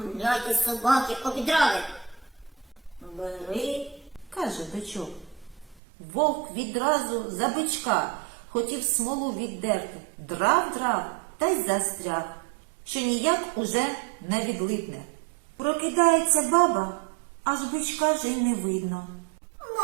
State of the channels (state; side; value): drops out; left; at 5.8 s